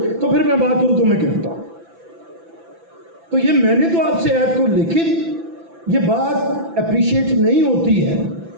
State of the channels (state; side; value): late; left; 5.9 ms